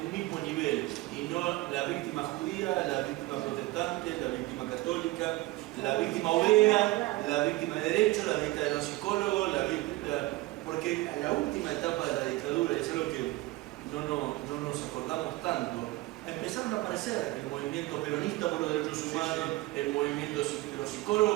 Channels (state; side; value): quieter; left; 19.6 dB